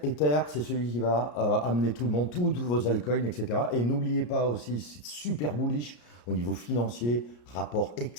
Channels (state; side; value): late; right; 34 ms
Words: Ether, c'est celui qui va amener tout le monde, tous vos altcoins, etc. Et n'oubliez pas aussi, c'est super bullish au niveau financier, rapport